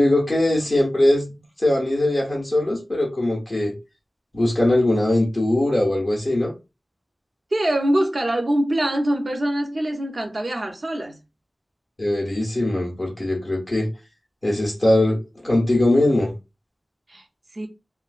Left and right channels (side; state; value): both; normal; correlation 0.96